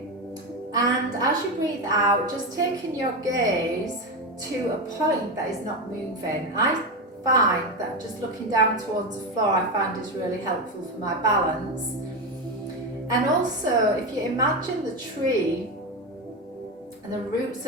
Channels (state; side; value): normal; both; correlation 0.15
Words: and as you breathe out, just taking your gaze to a point that is not moving. I find that just looking down towards the floor I find is really helpful for my balance. And also, if you imagine the tree and the roots